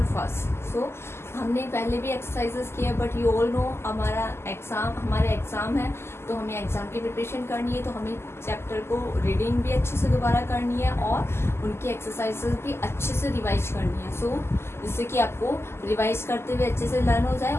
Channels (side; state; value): right; late; 0.12 ms